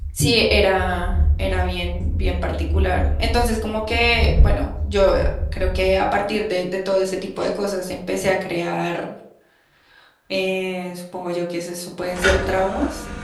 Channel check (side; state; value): both; identical; correlation 1.00